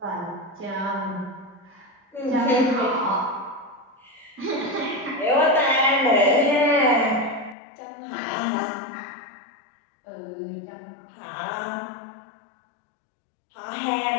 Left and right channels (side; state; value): right; drops out; at 7.6 s